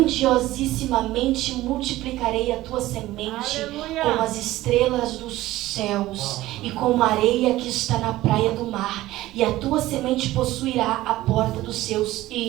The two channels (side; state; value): left; quieter; 16.4 dB